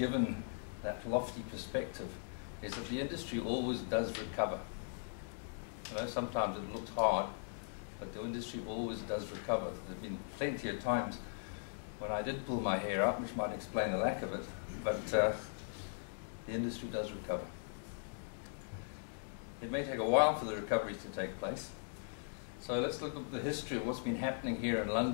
that lofty perspective, is that the industry always does recover. You know, sometimes it looks hard, but the industry always does recover. There have been plenty of times when I did pull my hair out, which might explain the lack of it, but the industry does recover. It may take a while for the recovery to take place. So let's look at the history of what's been happening here in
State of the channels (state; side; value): silent; right; digital silence